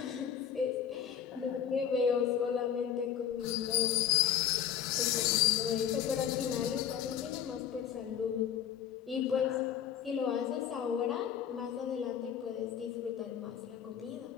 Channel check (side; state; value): right; quieter; 9.1 dB